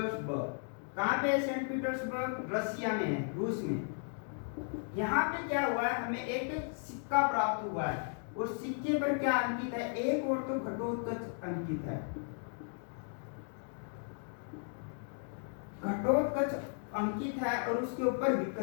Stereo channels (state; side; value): silent; right; 54 dB below the other